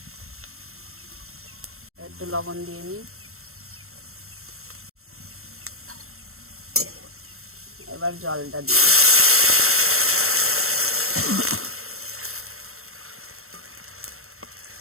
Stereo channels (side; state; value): left; late; 0.62 ms